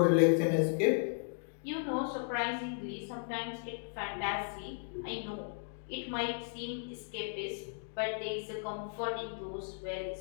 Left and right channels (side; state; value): right; silent; digital silence